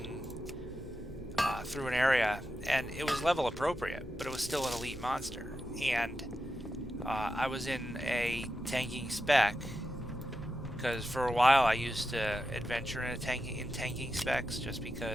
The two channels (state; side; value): normal; both; correlation 0.89